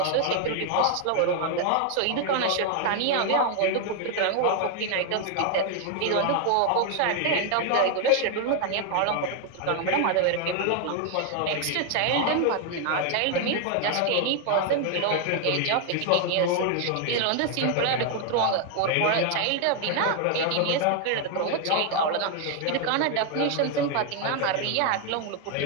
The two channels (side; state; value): both; different; correlation 0.00